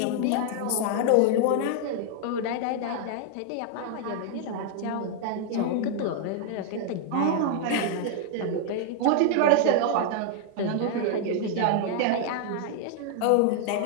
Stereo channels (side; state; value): both; different; correlation 0.00